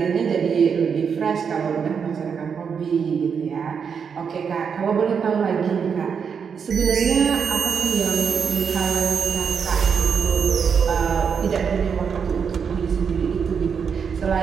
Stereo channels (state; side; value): quieter; left; 6.6 dB